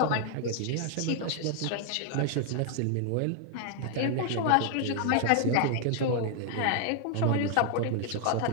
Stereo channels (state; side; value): different; both; correlation 0.00